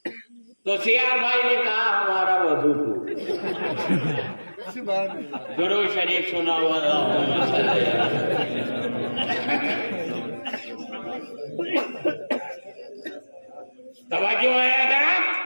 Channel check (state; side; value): inverted; both; correlation -1.00